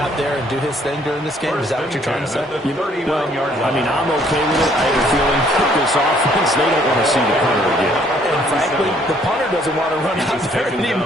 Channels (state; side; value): normal; both; correlation 0.63